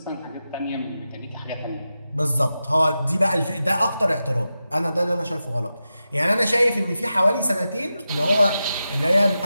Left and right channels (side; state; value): both; inverted; correlation -0.91